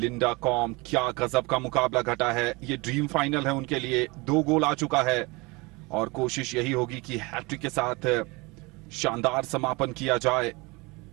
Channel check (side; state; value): left; quieter; 25.6 dB